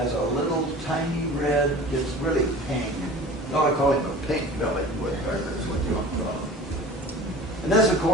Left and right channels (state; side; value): normal; both; correlation 0.40